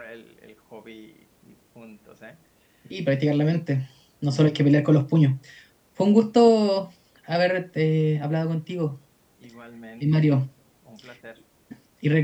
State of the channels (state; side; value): identical; both; correlation 1.00